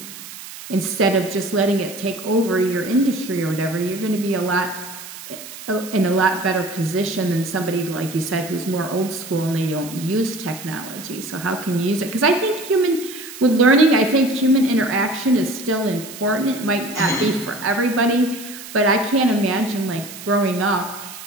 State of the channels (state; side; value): noise; right; hiss, 14 dB below the sound